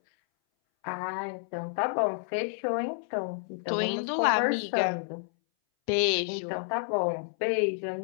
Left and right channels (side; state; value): right; silent; 58 dB below the other